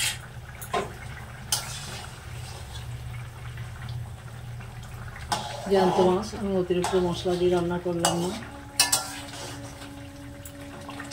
জ্যান্ত মাছ, আমি অতিরিক্ত মশলা দিয়ে রান্না করলাম না,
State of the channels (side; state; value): both; identical; correlation 1.00